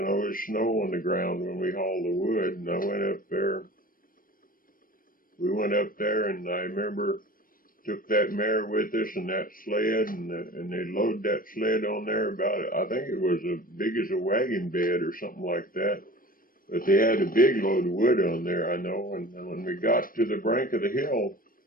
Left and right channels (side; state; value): right; late; 0.41 ms